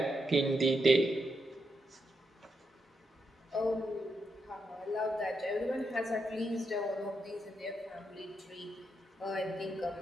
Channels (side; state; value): both; normal; correlation 0.83